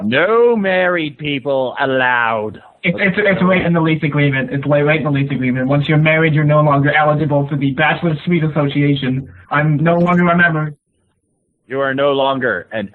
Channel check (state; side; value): identical; both; correlation 1.00